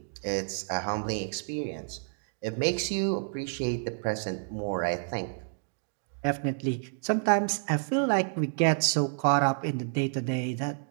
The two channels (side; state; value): left; silent; digital silence